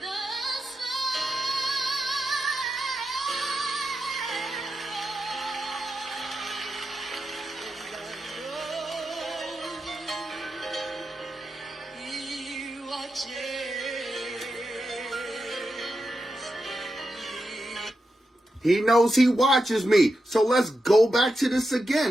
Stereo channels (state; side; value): normal; both; correlation 0.88